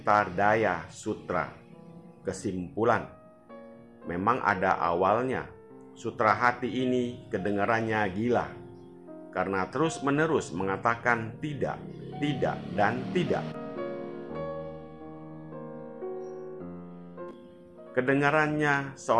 Daya Sutra. Kesimpulan, memang ada awalnya. Sutra hati ini kedengarannya gila, karena terus-menerus mengatakan tidak, tidak, dan tidak. Kedengarannya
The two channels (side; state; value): both; identical; correlation 1.00